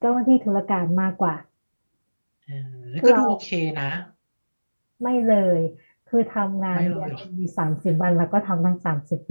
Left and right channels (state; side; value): inverted; both; correlation -1.00